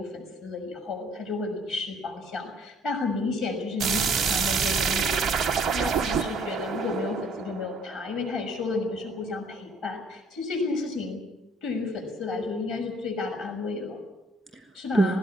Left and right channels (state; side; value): normal; both; correlation 0.59